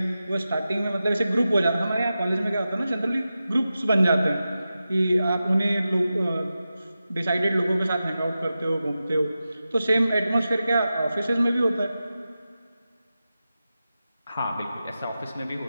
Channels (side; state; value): both; inverted; correlation -0.92